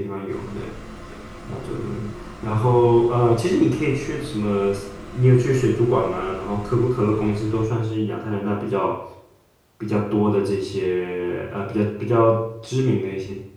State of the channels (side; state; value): both; identical; correlation 1.00